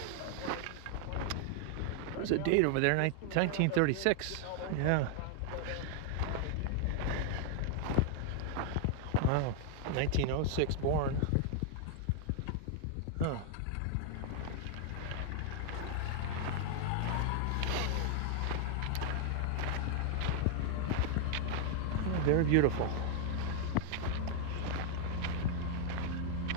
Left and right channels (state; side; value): different; both; correlation 0.00